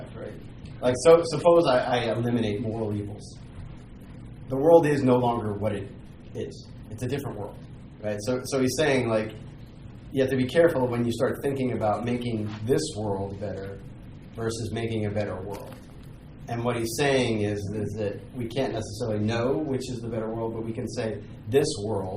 right? Like, so suppose I eliminate moral evils. The world is no longer what it is. It's a different world, right? So he's saying, like, you have to be careful when you start thinking about making this world better versus making a better world. And what he's saying is that we can't necessarily know which is the better world, but we can say this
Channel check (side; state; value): both; identical; correlation 1.00